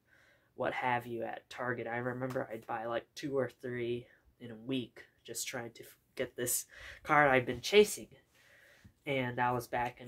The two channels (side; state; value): both; identical; correlation 1.00